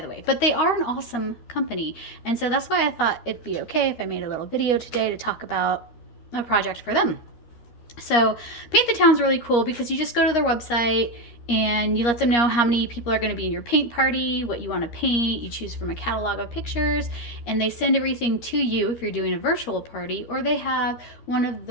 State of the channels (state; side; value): late; right; 13 ms